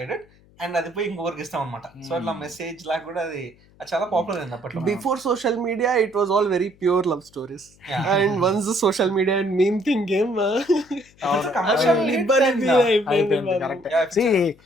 it and అది పోయి ఇంకొకరికి ఇస్తాం అనమాట. సో అట్లా మెసేజ్ లాగా కూడా అది చాలా పాపులర్ అయింది అప్పట్లో. Before social media it was all very pure love stories and once social media and meme thing game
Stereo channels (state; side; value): noise; left; hum, 29 dB below the sound